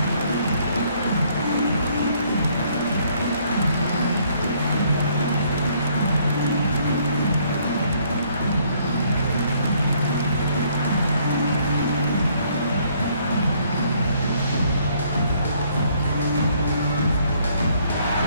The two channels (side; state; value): both; inverted; correlation -0.65